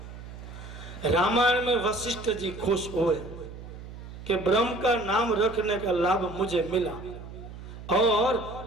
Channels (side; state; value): right; noise; hum, 13 dB below the sound